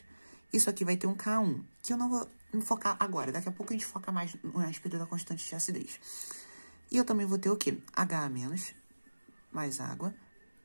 Isso aqui vai ter um K1, que eu não vou focar agora. Daqui a pouco a gente foca mais a respeito da constante de acidez. E eu também vou ter o quê? HA menos mais água,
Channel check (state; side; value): inverted; both; correlation -1.00